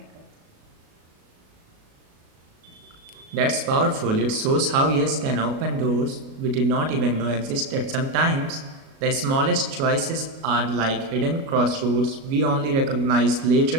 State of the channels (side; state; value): left; late; 37 ms